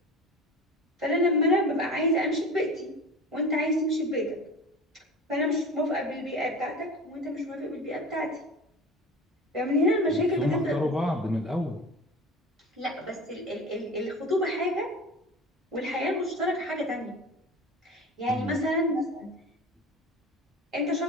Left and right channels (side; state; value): both; normal; correlation 0.34